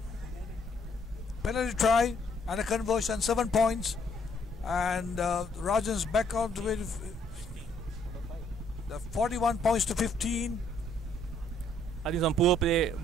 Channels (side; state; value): both; normal; correlation 0.67